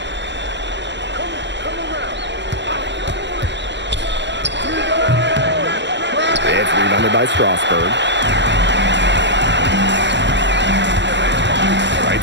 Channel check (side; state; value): left; late; 0.52 ms